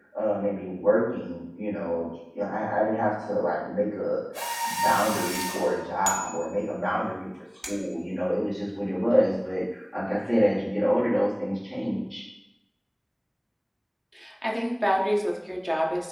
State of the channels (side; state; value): both; identical; correlation 1.00